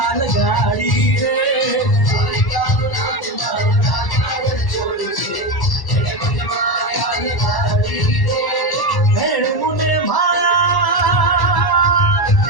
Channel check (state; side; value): late; right; 1.1 ms